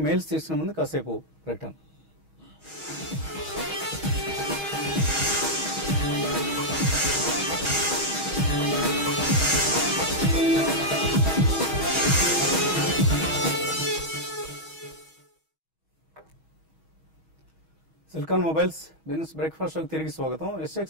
మెయిల్స్ తీసుకునే ముందు కాసేపు ప్రకటన. సిలికాన్ మొబైల్స్ బిజినెస్ బ్రేక్ఫాస్ట్ షోకి తిరిగి స్వాగతం. SX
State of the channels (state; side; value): late; left; 6.3 ms